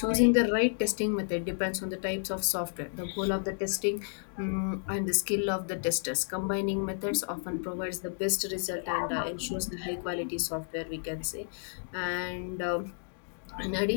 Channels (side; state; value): right; silent; digital silence